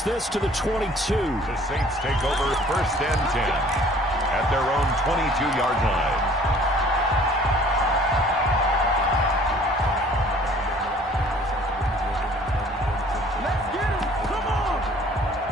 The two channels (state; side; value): normal; both; correlation 0.54